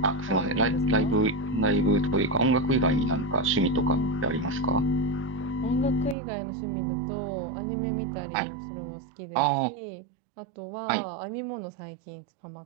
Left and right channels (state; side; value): drops out; left; at 6.2 s